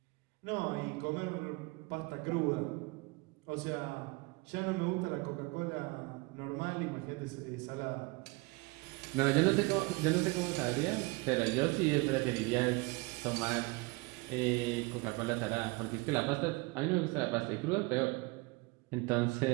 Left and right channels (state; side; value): quieter; left; 25.7 dB